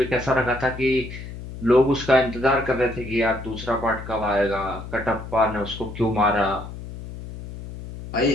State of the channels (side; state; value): left; noise; hum, 11 dB below the sound